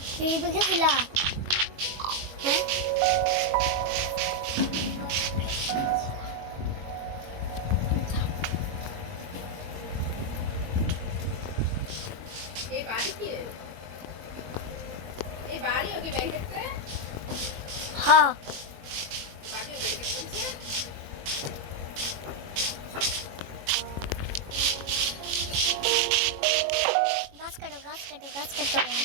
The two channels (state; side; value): late; left; 21 ms